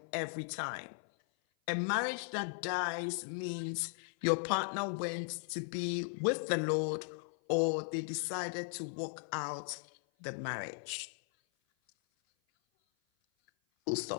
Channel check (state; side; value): silent; right; 53 dB below the other